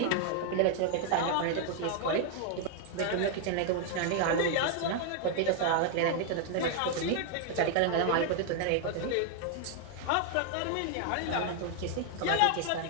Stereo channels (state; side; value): different; both; correlation 0.00